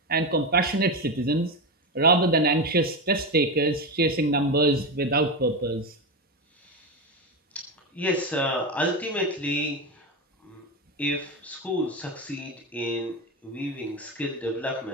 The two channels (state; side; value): normal; both; correlation 0.16